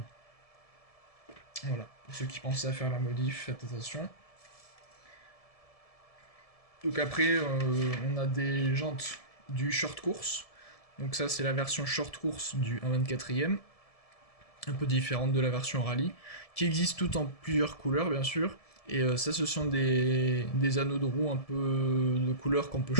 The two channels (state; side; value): late; right; 1.7 ms